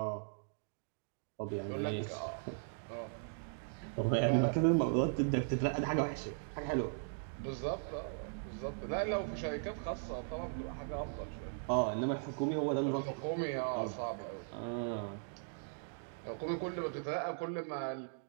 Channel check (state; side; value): silent; left; digital silence